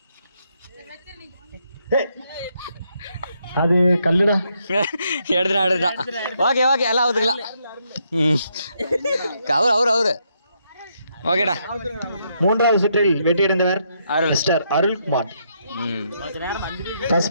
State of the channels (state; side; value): inverted; both; correlation -0.76